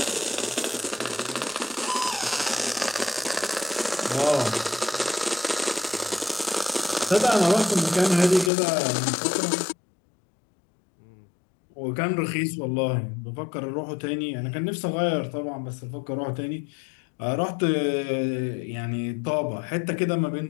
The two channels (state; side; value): drops out; right; at 8.5 s